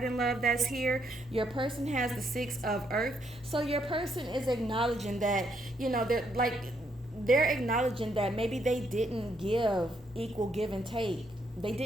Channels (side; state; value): both; normal; correlation 0.74